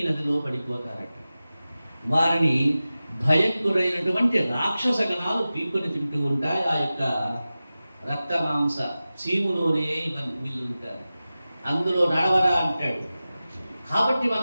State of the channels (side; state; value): both; inverted; correlation -0.95